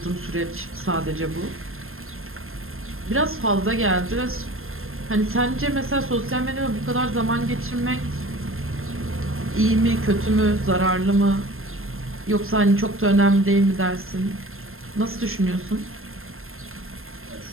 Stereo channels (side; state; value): left; late; 0.61 ms